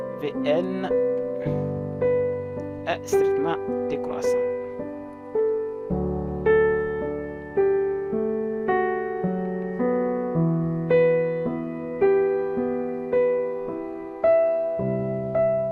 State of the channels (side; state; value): both; identical; correlation 1.00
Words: Vn est strictement décroissant.